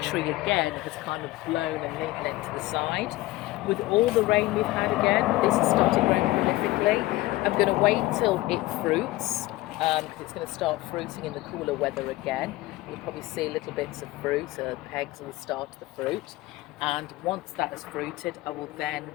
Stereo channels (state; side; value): quieter; right; 18.4 dB